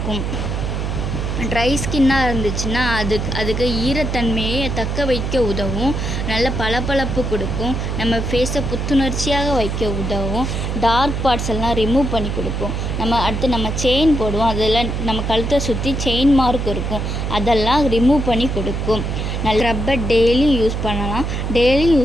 ட்ரை ஸ்கின்னாக இருந்துச்சுன்னா அதுக்கு ஈரத்தன்மையை தக்க வைக்க உதவும். நல்ல பளபளப்பு கொடுக்கும். நம்ம ஃபேஸை புத்துணர்ச்சியாக வைக்க உதவும். டார்க் பார்ட்ஸ் எல்லாம் ரிமூவ் பண்ணி கொடுக்கும். நம்ம செயின் போடுவோம், அதில் நம்ம கழுத்தை சுற்றி செயின் மார்க் இருக்கும், அதெல்லாம் ரிமூவ் பண்ணி கொடுக்கும். நல்ல ரப்பர் டெய்லி யூஸ் பண்ணலாம். டெய்லி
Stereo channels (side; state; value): right; noise; hum, 2 dB below the sound